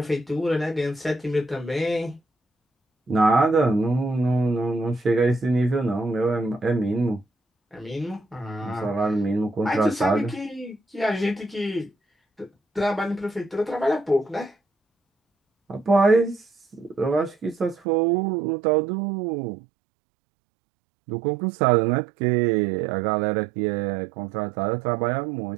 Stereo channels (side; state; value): left; drops out; at 17.8 s